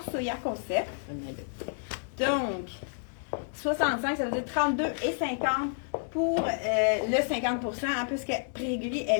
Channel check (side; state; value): right; silent; digital silence